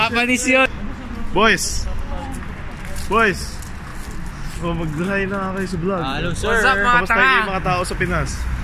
yun. Boys! Oh, mag-hi na kayo sa vlog. Hello sir. What's up mga Kamusta kayo mga tao sa Pinas?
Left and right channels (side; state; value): both; identical; correlation 1.00